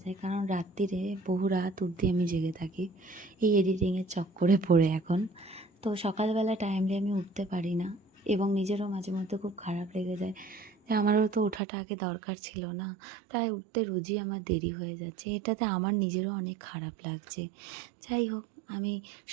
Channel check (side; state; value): left; drops out; at 11.6 s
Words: যায়, কারণ রাত্রিরে বহু রাত অবধি আমি জেগে থাকি এই এডিটিংয়ের চক্করে পড়ে এখন। তো সকালবেলা টাইমলি আমি উঠতে পারি না এবং নিজেরও মাঝে মধ্যে খুব খারাপ লেগে যায় যে আমারও তো ওঠাটা আগে দরকার ছিল না, তাই উঠতে রোজই আমার দেরি হয়ে যাচ্ছে। এটাতে আমার নিজেরও অনেক খারাপ লাগছে। যাই হোক, আমি